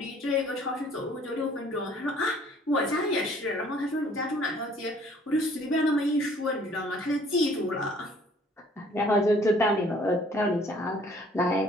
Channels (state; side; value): normal; both; correlation 0.57